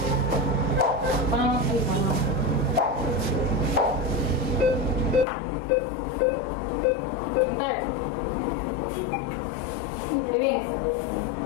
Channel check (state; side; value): drops out; right; at 5.2 s